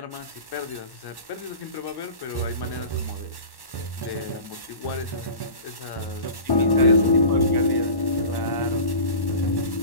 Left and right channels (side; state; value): right; late; 1.1 ms